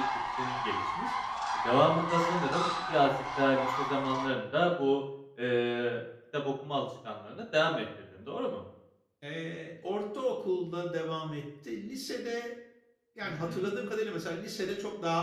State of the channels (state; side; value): identical; both; correlation 1.00